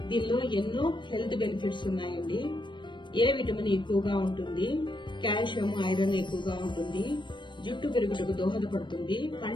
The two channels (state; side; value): late; right; 0.23 ms